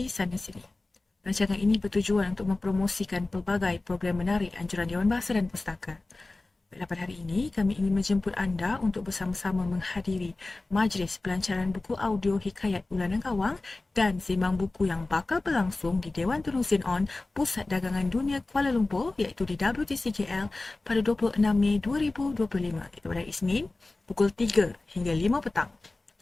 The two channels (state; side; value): quieter; right; 3.1 dB